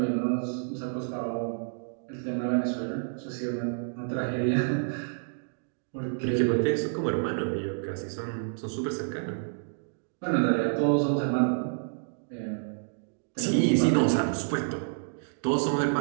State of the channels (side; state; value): left; silent; digital silence